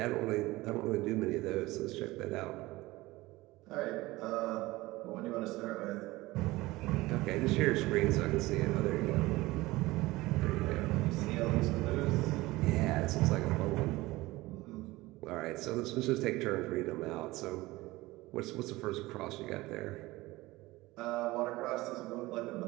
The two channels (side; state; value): left; quieter; 19.7 dB